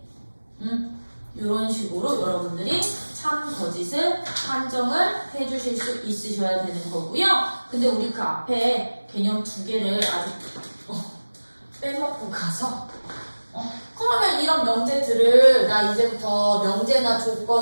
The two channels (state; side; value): inverted; both; correlation -1.00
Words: 이런 식으로 여러분들이 참 거짓을 판정을 해주실 수 있으셔야 되는 거고요. 근데 우리 그 앞에 개념 두 개를 아직 빼먹고 가서 그러면 이런 명제들을 나 이제부터 명제나